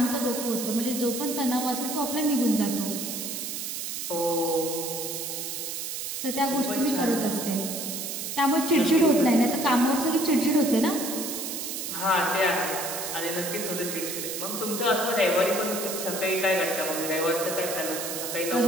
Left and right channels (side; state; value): right; noise; hiss, 5 dB below the sound